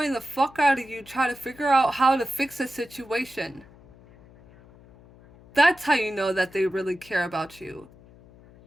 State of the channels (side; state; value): left; noise; hum, 24 dB below the sound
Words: the fuck out of you trying to figure out how to fix a situation. That's how you know that they really care about you.